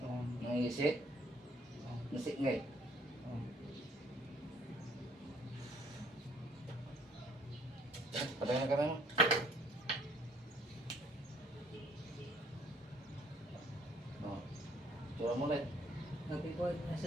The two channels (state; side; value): normal; both; correlation 0.63